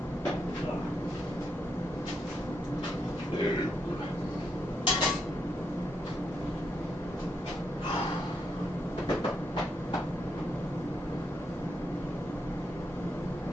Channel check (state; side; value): normal; both; correlation 0.80